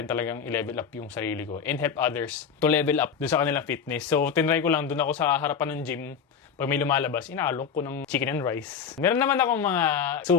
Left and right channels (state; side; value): quieter; right; 6.9 dB